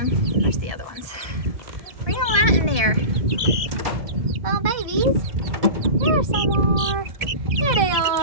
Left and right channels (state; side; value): late; left; 1.7 ms